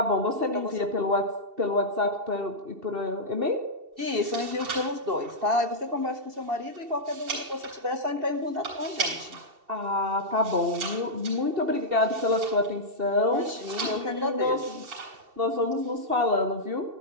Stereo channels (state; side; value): late; left; 2.7 ms